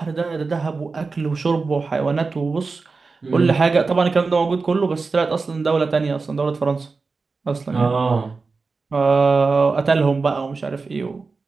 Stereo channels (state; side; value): quieter; left; 4.2 dB